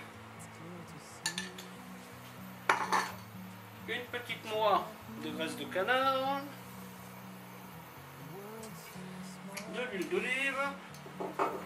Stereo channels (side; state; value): both; identical; correlation 1.00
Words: une petite noix de graisse de canard, de l'huile d'olive.